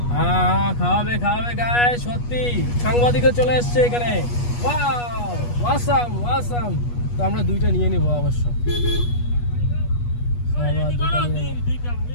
খাওয়াবে গায়ে সত্যি। সাংবাদিকও চলে এসছে এখানে। ওয়াসাম। তো আমরা দুইটা নিয়ে নিবো অবশ্য।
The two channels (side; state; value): right; late; 8.3 ms